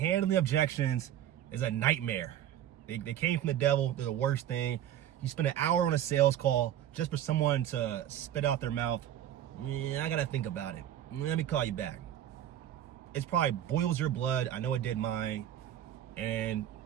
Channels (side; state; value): left; quieter; 11.4 dB